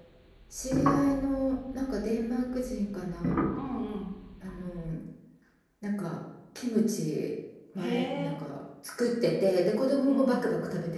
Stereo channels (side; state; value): both; identical; correlation 1.00